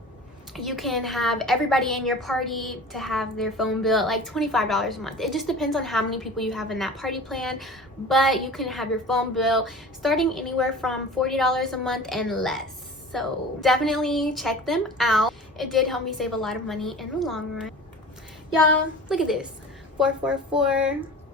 you can have everybody in your party to have their phone bill at like $25 a month. It just depends on how many people you have in that party plan, but you can have your phone bill starting anywhere from $40 a month and less. So definitely check them out. It did help me save a lot of money in the long run. Y'all, look at this. 444.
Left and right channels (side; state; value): both; normal; correlation 0.38